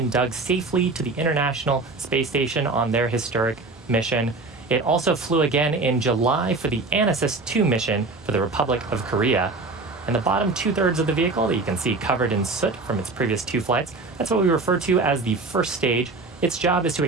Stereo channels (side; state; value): left; quieter; 3.6 dB